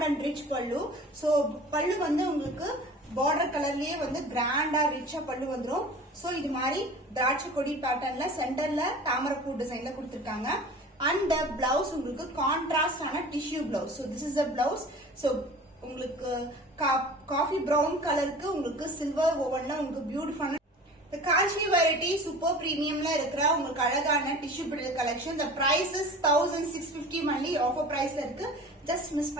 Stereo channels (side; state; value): both; normal; correlation 0.40